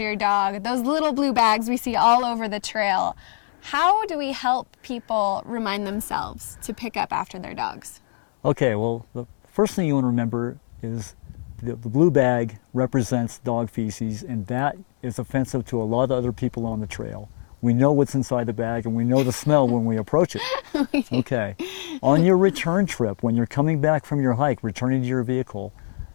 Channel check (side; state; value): right; silent; digital silence